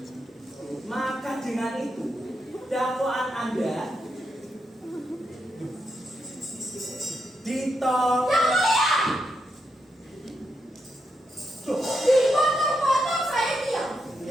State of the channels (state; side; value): normal; both; correlation 0.83